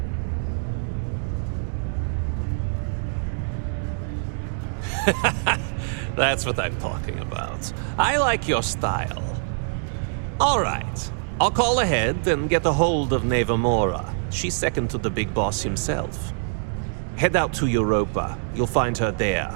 That's what I'm talking about. I like your style. All right. I'll call ahead and get a hold of Nevamora. She's second to the big boss himself. Head out to Europa. You'll find her there.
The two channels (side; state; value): left; silent; digital silence